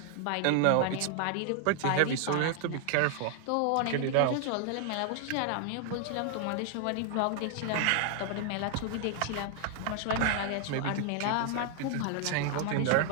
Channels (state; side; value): different; both; correlation 0.00